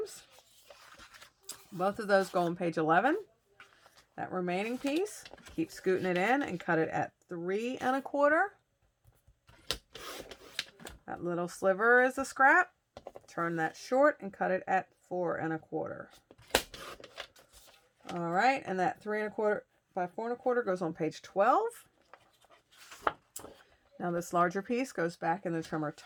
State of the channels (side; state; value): both; identical; correlation 1.00